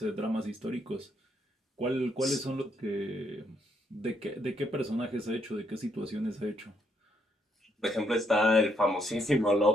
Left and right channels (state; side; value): normal; both; correlation 0.74